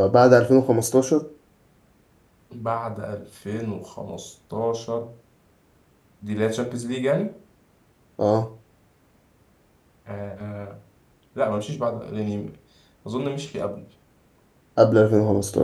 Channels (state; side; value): identical; both; correlation 1.00